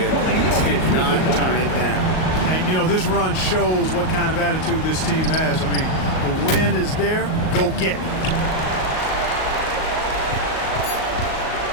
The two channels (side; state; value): right; late; 38 ms